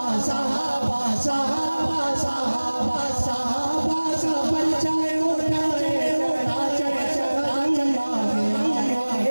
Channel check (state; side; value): inverted; both; correlation -1.00